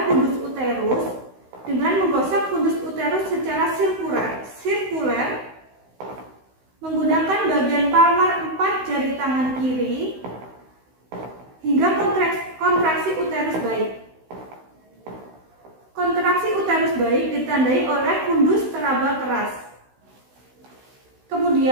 fundus uterus dengan menggosok fundus uterus secara sirkuler menggunakan bagian palmar 4 jari tangan kiri hingga kontraksi uterus baik. Kontraksi uterus baik ditandai oleh fundus teraba keras.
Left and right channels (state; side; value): late; left; 16 ms